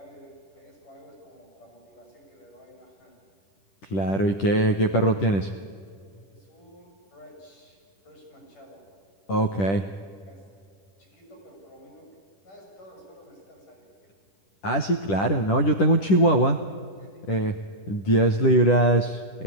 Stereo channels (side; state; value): right; late; 10 ms